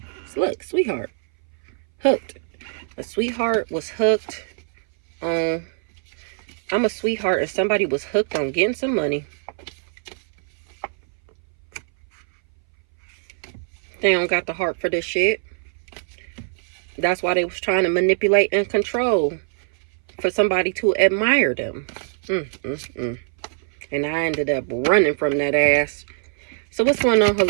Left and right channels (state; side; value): silent; left; 60 dB below the other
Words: So look, sweetheart. Hooked. A sweetheart was hooked on... I'm a sweetheart and somebody was hooked on getting some money. They don't got the heart for this shit. That's why they was trying to manipulate and control for somebody to admire them. And I ended up running from that ass. So what's going on,